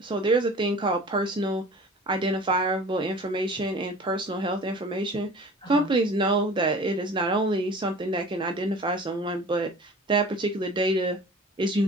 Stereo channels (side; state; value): both; normal; correlation 0.43